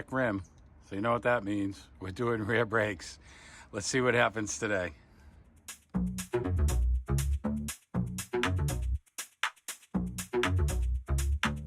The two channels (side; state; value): both; identical; correlation 1.00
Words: rim. So you know what that means. We're doing rear brakes. Let's see what happens today.